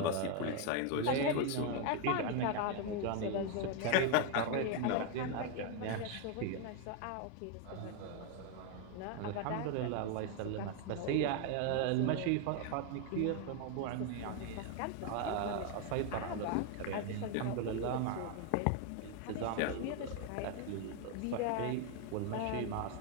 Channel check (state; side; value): different; both; correlation 0.01